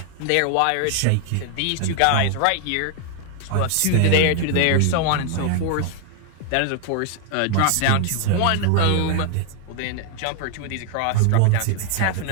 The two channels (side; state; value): both; different; correlation 0.00